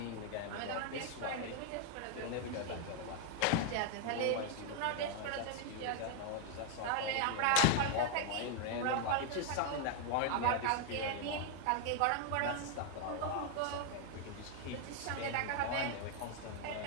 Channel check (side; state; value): both; different; correlation 0.00